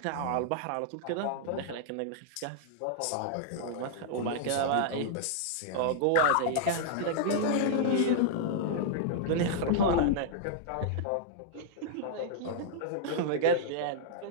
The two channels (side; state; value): both; different; correlation -0.01